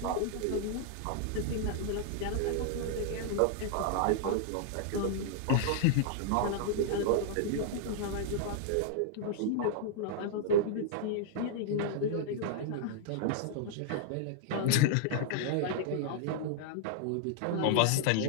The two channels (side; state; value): both; different; correlation -0.01